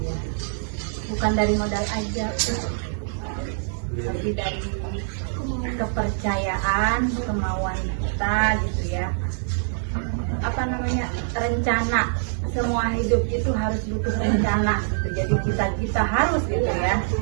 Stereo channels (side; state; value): left; silent; digital silence